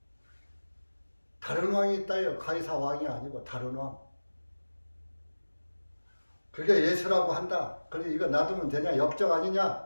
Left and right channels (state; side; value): inverted; both; correlation -1.00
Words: 다른 왕이 있다요. 가이사 왕이 아니고 다른 왕. 그게 예수라고 한다. 그래 이거 놔두면 되냐? 역적